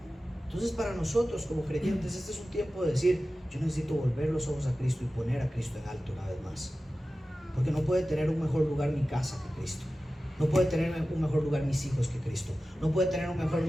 Entonces para nosotros como creyentes este es un tiempo de decir, yo necesito volver los ojos a Cristo y poner a Cristo en alto una vez más. Porque no puede tener un mejor lugar mi casa que Cristo. No puede tener un mejor lugar mis hijos que Cristo. No puede tener un mejor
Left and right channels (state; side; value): normal; both; correlation 0.95